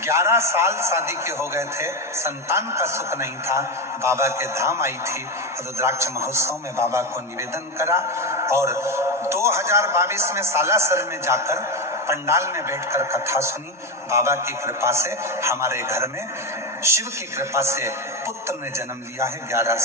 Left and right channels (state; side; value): normal; both; correlation 0.14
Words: साल शादी के हो गए थे, संतान का सुख नहीं था। बाबा के धाम आई थी, रुद्राक्ष महोत्सव में बाबा को निवेदन करा और 2022 में सालासर में जाकर पंडाल में बैठकर कथा सुनी। बाबा की कृपा से हमारे घर में शिव की कृपा से पुत्र ने जन्म लिया है 11